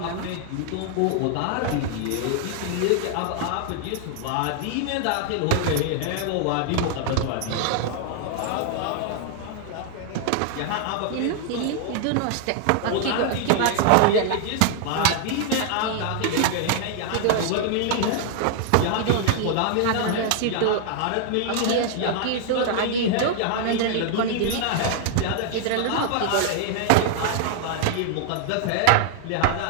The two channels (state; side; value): different; both; correlation 0.00